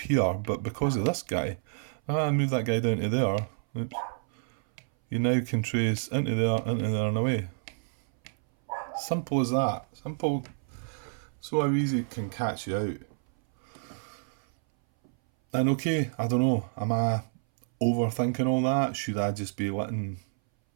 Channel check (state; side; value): silent; left; 59 dB below the other